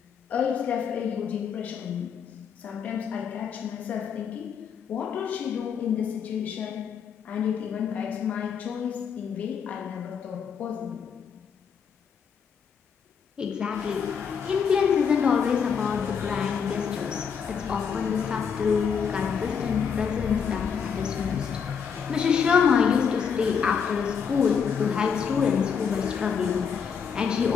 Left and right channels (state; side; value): quieter; right; 6.7 dB